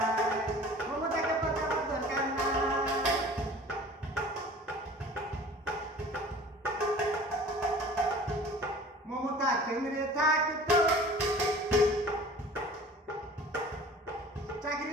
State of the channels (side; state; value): both; normal; correlation 0.45